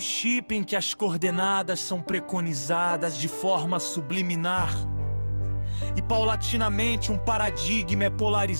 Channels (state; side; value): inverted; both; correlation -1.00